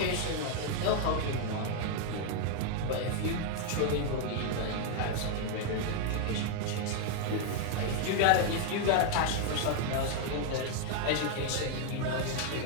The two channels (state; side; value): different; both; correlation 0.00